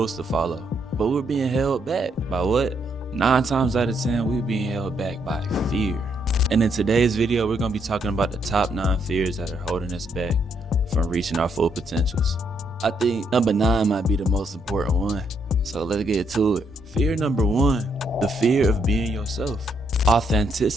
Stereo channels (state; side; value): normal; both; correlation 0.74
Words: to follow, but we're being held back by what? 9 times out of 10, we're being held back by fear. And in today's video, we're gonna be talking about the top 9 fears that are holding us back from reaching our full potentials. I think number 9 might be the most important one. So let's get to it. Fear number 1, the fear of being yourself.